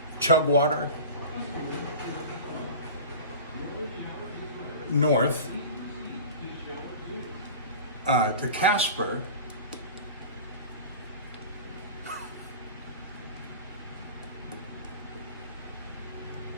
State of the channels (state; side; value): inverted; both; correlation -0.35